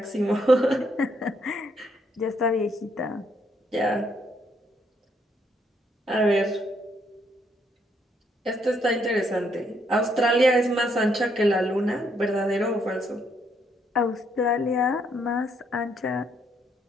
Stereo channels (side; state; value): both; normal; correlation 0.72